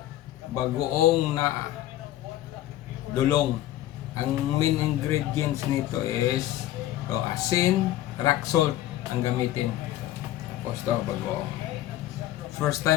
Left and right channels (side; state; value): right; quieter; 14.1 dB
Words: bagoong na dulong. Ang main ingredients nito is asin, rock salt ang gamitin. Tapos to, bagoong. First